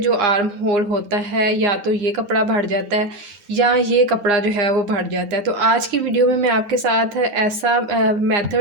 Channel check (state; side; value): late; left; 9.8 ms